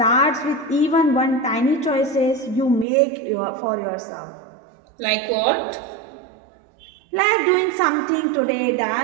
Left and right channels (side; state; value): left; drops out; at 2.9 s